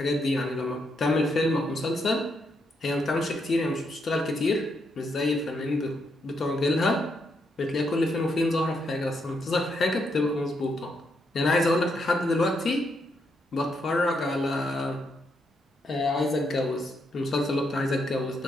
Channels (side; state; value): both; normal; correlation 0.78